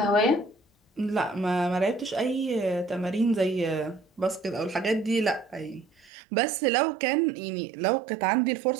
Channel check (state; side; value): drops out; left; at 6.1 s